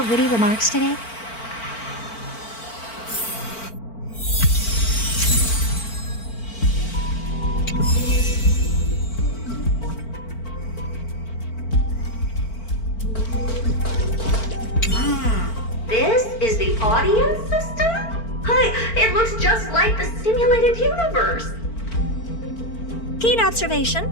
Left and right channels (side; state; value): right; late; 4.5 ms